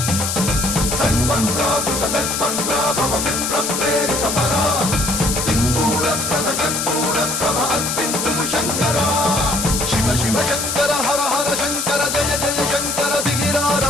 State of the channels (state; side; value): noise; left; hiss, 2 dB below the sound